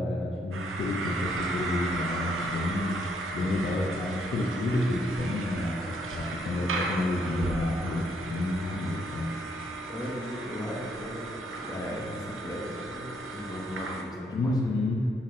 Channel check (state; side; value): normal; both; correlation 0.71